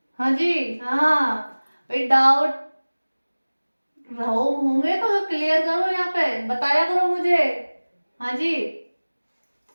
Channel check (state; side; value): inverted; both; correlation -1.00